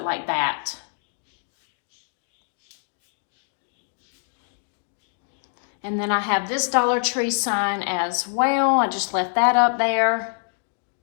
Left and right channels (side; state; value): right; silent; 62 dB below the other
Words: like that. And then I have this Dollar Tree sign as well. I just left that up there.